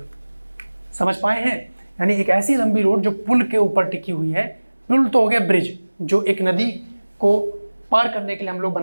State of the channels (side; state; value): both; inverted; correlation -1.00